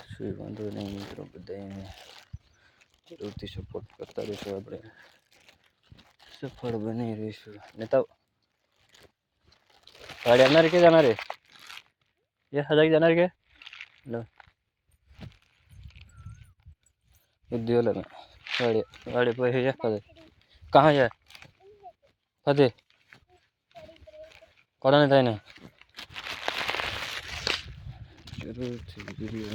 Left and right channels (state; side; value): identical; both; correlation 1.00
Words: શું વાંધો નહીં મિત્રો, બધાને જરૂરથી સપોર્ટ કરતા રહીશું, આપણે સફળ બની રહીશું. નેતા गाड़ी जाना के जाना रे ये हजार जाना के लो उद्योग में गाड़ी गाड़ी पे है फदे कहाँ जाए फदे कौन नहीं था ना जरूर थी वीडियो